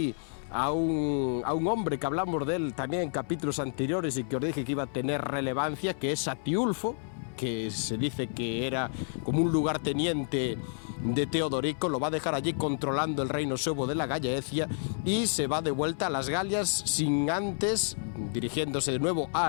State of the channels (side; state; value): right; silent; 58 dB below the other